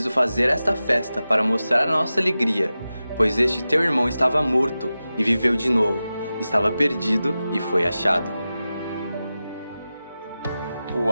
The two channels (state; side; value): inverted; both; correlation -0.94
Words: fazer esta festa para mostrar a nossa alegria, pois este teu irmão estava morto e viveu de novo, estava perdido e foi achado.